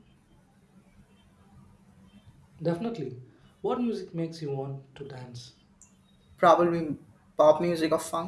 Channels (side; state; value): both; identical; correlation 1.00